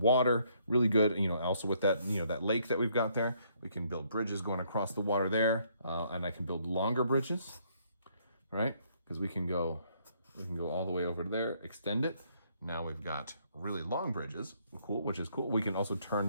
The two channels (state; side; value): inverted; both; correlation -0.68